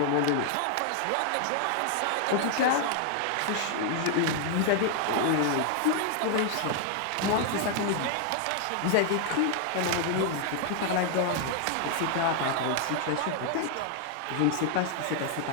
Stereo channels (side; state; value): both; different; correlation 0.00